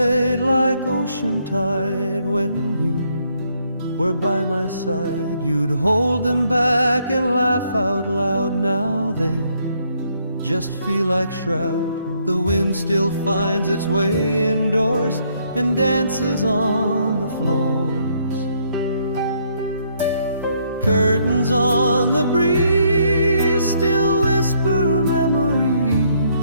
like ocean tide when you were by my side. You'd hold them back and laugh out loud. Now they just feel like shroud. The wind still finds its way indoors and dances on the floors. Curtains on the breeze still whisper memories.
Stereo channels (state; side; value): inverted; both; correlation -0.70